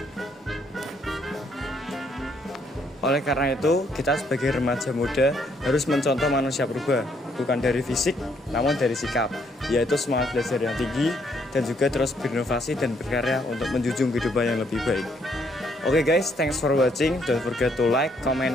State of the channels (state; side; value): normal; both; correlation 0.70